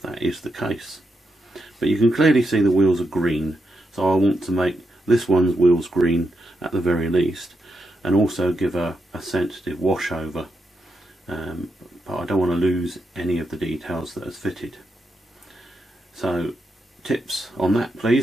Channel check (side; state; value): both; normal; correlation 0.84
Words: that is the case. But you can clearly see the wheels are green, so I want to make this one's wheels green at the very least, and also give a sensitive wash over. But I don't want to lose any of the details that is fitted. So tips on that